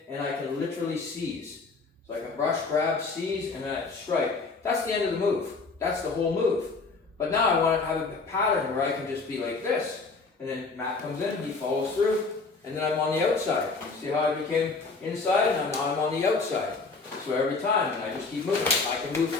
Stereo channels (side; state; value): right; quieter; 4.1 dB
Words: and I can literally seize. So I can brush, grab, seize, and then I strike. That's the end of the move. That's the whole move. But now I want to have a pattern where I can just be like this. And then Matt comes in, he follows through, and then I'm on the outside. See how I became inside, and now I'm on the outside. So every time, and I just keep moving. I can move